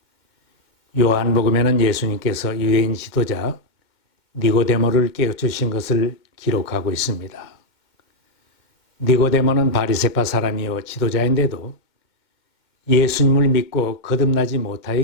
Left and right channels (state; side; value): late; right; 2.1 ms